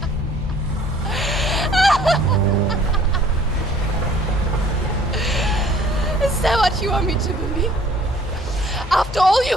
Is that what you want me to believe? After all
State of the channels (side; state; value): both; normal; correlation 0.55